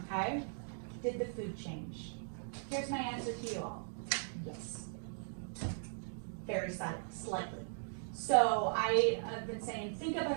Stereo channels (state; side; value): silent; left; digital silence